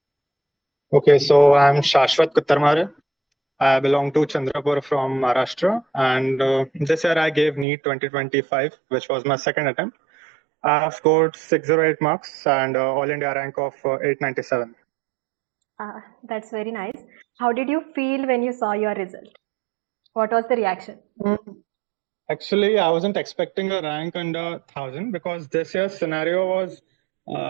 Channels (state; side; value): drops out; left; at 7.7 s